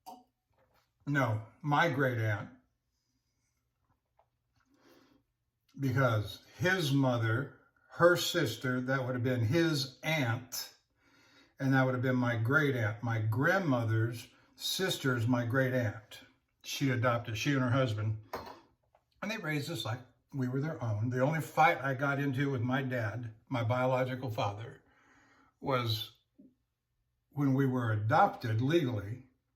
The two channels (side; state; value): both; identical; correlation 1.00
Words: No, my great aunt. Because his mother, her sister, that would have been his aunt. And that would have been my great aunt. My grandmother's sister's my great aunt. She adopted, she and her husband. And they raised us like we were their own. The only fight I got into with my dad, my biological father, was when we were adopted legally